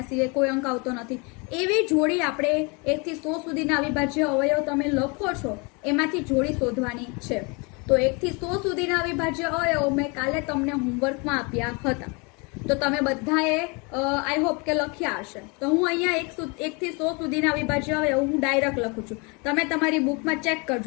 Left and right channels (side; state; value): right; quieter; 30.7 dB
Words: સિવાય કોઈ અંક આવતો નથી. એવી જોડી આપણે 1 થી 100 સુધીના અવિભાજ્ય અવયવ તમે લખો છો એમાંથી જોડી શોધવાની છે. તો 1 થી 100 સુધીના અવિભાજ્ય અવયવો મેં કાલે તમને હોમવર્કમાં આપ્યા હતા. તો તમે બધાએ આઈ હોપ કે લખ્યા હશે. તો હું અહીંયા 1 થી 100 સુધીના અવિભાજ્ય અવયવ હું ડાયરેક્ટ લખું છું. તમે તમારી બુકમાં ચેક